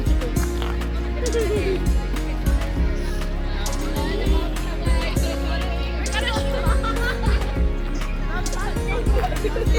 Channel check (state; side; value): identical; both; correlation 1.00